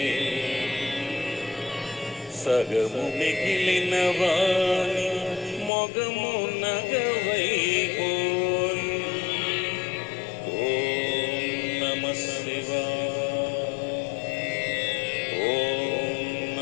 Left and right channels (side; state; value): right; drops out; at 5.7 s